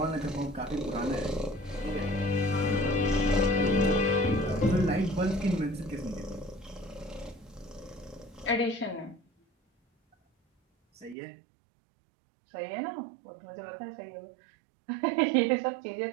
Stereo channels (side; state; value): left; drops out; at 11.2 s